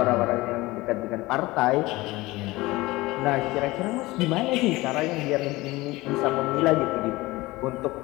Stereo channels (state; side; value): quieter; right; 20.2 dB